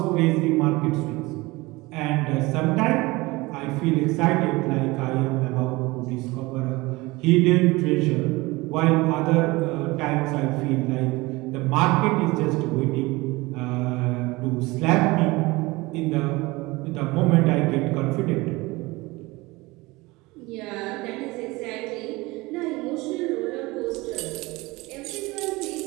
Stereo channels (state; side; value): quieter; left; 22.2 dB